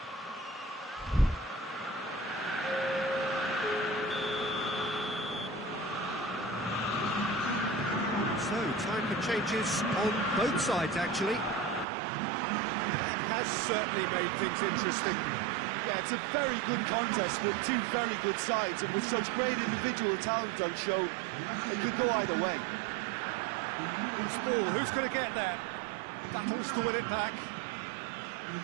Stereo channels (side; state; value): left; drops out; at 11.9 s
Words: So, time for changes on both sides, actually. That has certainly made things interesting. Yeah, it's a very good contest with two very good sides, and with such great individual talent on show, it could go either way. Loose ball, who's going to get there? Battles to win it back.